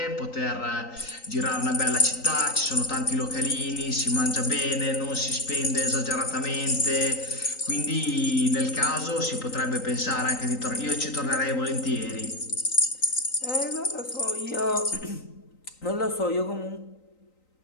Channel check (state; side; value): late; right; 3.9 ms